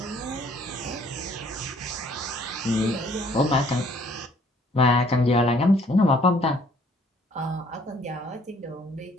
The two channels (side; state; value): both; normal; correlation 0.61